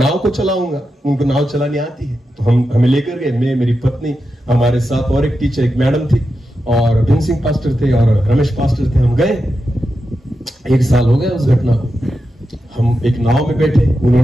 को चलाऊंगा, उनको नाव चलानी आती है। तो हमें लेकर गए, मैं, मेरी पत्नी, हमारे साथ और एक टीचर, एक मैडम थी, और भीम सिंह पास्टर थे और रमेश पास्टर थे। हम गए, 1 साल हो गया उस घटना को। हम एक नाव में बैठे,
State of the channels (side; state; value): both; normal; correlation 0.89